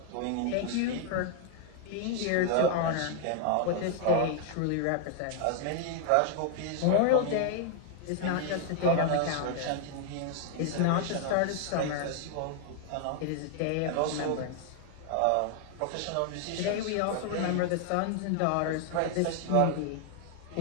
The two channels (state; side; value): different; both; correlation 0.00